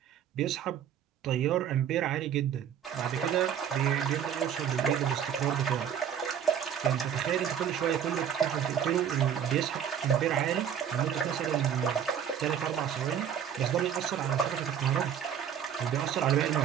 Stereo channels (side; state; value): left; quieter; 8.8 dB